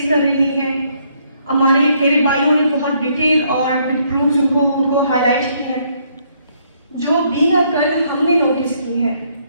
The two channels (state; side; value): inverted; both; correlation -0.70